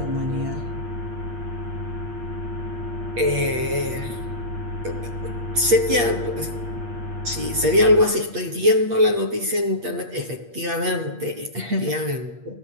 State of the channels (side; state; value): left; late; 8.5 ms